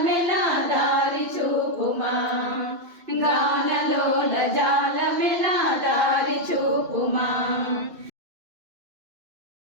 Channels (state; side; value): late; left; 2.5 ms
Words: దారి చూపుమా గానలోల జాలమెలా దారి చూపుమా